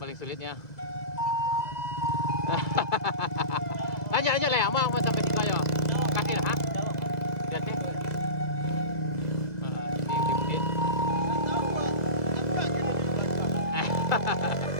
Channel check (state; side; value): late; right; 2.1 ms